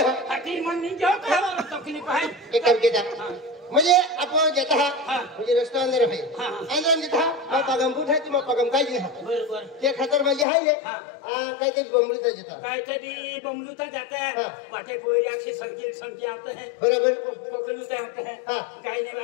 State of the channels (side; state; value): right; drops out; at 10.5 s